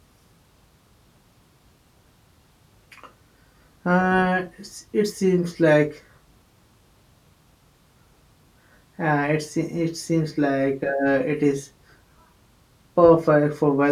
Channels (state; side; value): identical; both; correlation 1.00